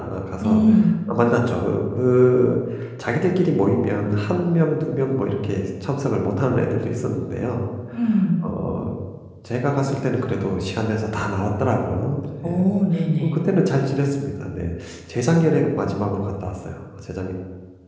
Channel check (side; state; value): both; identical; correlation 1.00